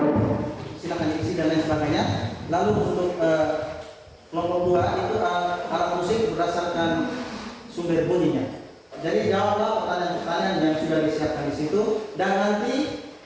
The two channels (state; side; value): identical; both; correlation 1.00